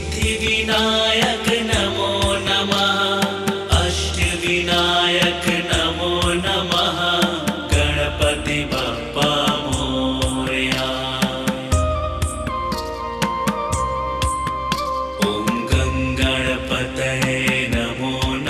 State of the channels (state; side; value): identical; both; correlation 1.00